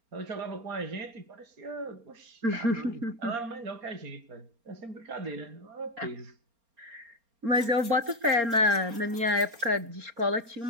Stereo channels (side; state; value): left; late; 4.3 ms